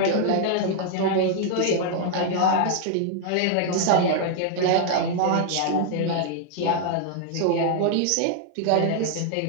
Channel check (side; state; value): both; different; correlation 0.00